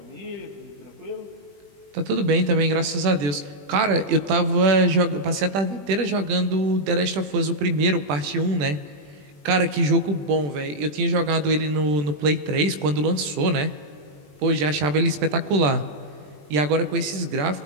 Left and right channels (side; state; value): left; late; 20 ms